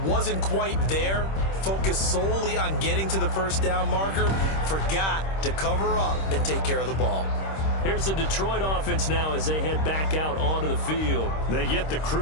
wasn't quite there. Focused solely on getting to the 1st down marker. Forgot to cover up and take care of the ball. Here's the Detroit offense now as they head back out onto the field. They get the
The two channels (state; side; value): late; right; 26 ms